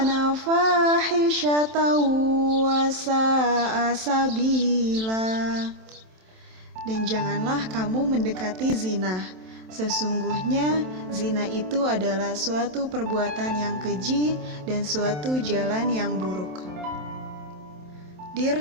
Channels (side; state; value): left; late; 27 ms